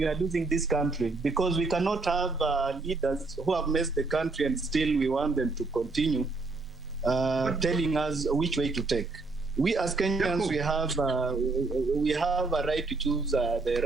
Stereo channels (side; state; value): left; quieter; 3.7 dB